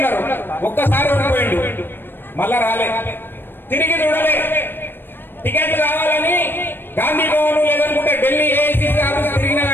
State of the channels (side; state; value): right; late; 0.098 ms